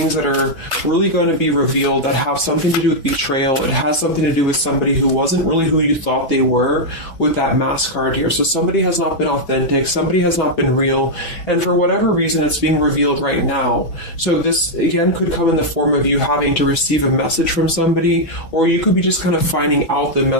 that are really going to be revealed that have something to do with betrayal. It has something to do with somebody who wasn't really who you thought they were with that mask card here. So somebody has not been authentic, somebody has not been real, and for whatever reason it's being revealed right now. So this again could come in the form of you having to receive a message from somebody, or you could be just kind of finding out the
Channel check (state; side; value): late; right; 6.1 ms